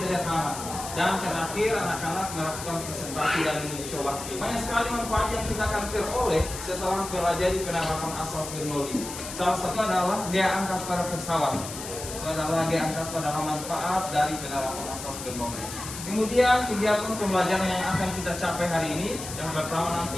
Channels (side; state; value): left; noise; hiss, 9 dB below the sound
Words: Dan terakhir, anak-anak melakukan presentasi dan mencoba hasil. Banyak sekali manfaat yang kita akan peroleh setelah mempelajari penerapan asas Bernoulli. Salah satu adalah gaya angkat pada pesawat. Adalah gaya angkat pada manfaat dari penerapan asas Bernoulli. Kemudian kegiatan pembelajaran yang akan kita capai hari ini, yang pertama